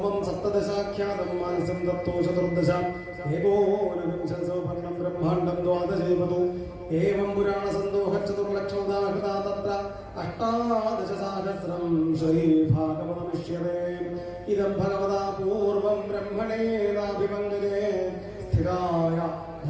സപ്തദശാഖ്യാതം മാനസം തത്തോ ചതുർദശ ഏകോനവിംശസൗപർണം ബ്രഹ്മാണ്ഡം ദ്വാദശൈവതു ഏവം പുരാണസന്തോഹ ചതുർലക്ഷോദാഹൃതാ തത്ര അഷ്ടാദശസഹസ്രം ശ്രീഭാഗവതമിഷ്യതേ. ഇദം ഭഗവതാ പൂർവം ബ്രഹ്മണേനാഭിപങ്കജേ സ്ഥിതായ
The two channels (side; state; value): both; identical; correlation 1.00